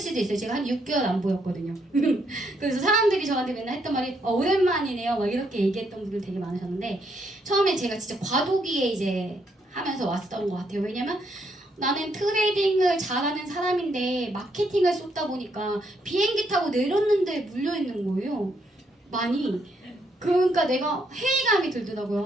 있어요. 제가 한 6개월 안 보였거든요. 그래서 사람들이 저한테 맨날 했던 말이 오랜만이네요. 막 이렇게 얘기했던 분들 되게 많으셨는데 처음에 제가 진짜 과도기에 이제 하면서 왔던 것 같아요. 왜냐면 나는 트레이딩을 잘하는 사람인데 마케팅을 쏟다 보니까 비행기 타고 내렸는데 물려있는 거예요. 많이. 그러니까 내가 회의감이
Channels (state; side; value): normal; both; correlation 0.74